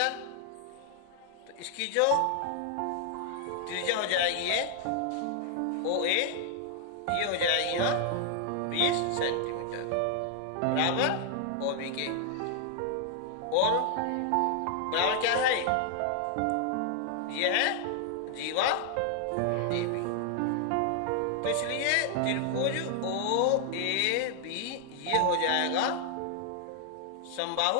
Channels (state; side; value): different; both; correlation 0.00